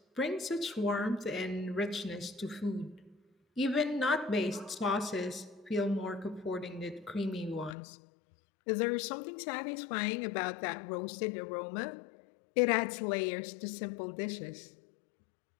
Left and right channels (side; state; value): right; drops out; at 7.8 s